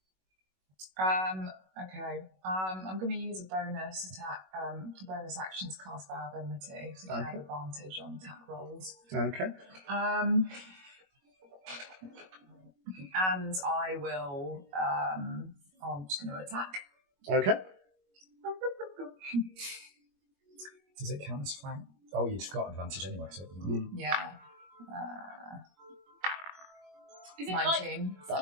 Okay. I'm going to use a bonus attack, bonus action to cast Viability, so you can have advantage on attack rolls. Okay. And I will. I'm just going to attack. Okay. Does it count as flank? Oh, you've got advantage anyway, so it doesn't matter. Yeah. Is it 19.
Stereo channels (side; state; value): left; late; 21 ms